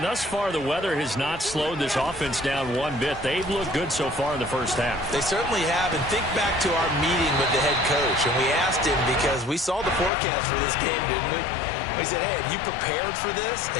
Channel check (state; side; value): drops out; right; at 10.1 s